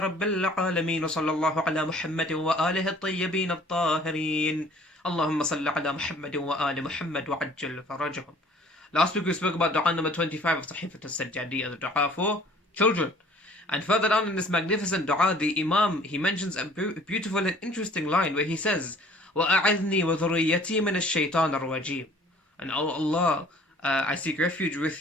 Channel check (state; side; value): normal; both; correlation 0.53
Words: العالمين وصلى الله على محمد وآله الطيبين الطاهرين اللهم صل على محمد وآل محمد وعجل فرجهم. Last week we spoke about dua number 25 of Sahifa al-Sajjadiyya, the dua for children. And further down in this magnificent dua, the Imam, he mentions a beautiful and interesting line where he says, وَأَعِذْنِي وَذُرِّيَّتِي مِنَ الشَّيْطَانِ الرَّجِيمِ. And oh Allah, I seek refuge